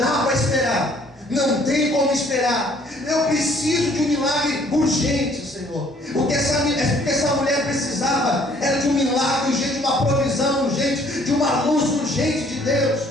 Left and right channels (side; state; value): both; normal; correlation 0.60